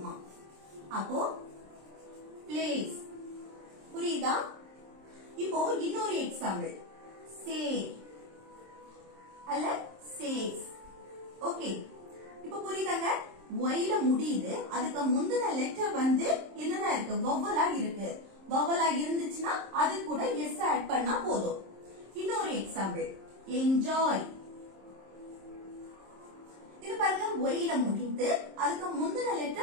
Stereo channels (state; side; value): late; left; 26 ms